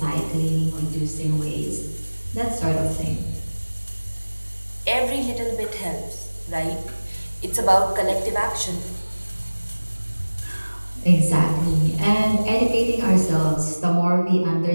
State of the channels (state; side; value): inverted; both; correlation -1.00